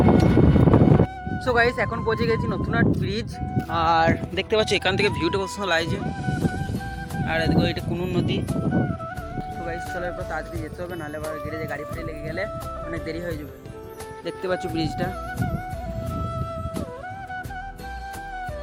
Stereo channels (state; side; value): identical; both; correlation 1.00